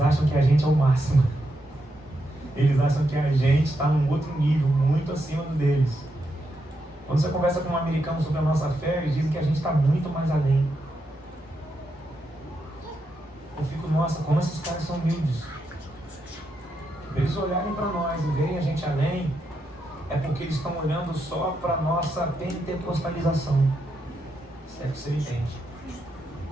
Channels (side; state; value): both; normal; correlation 0.83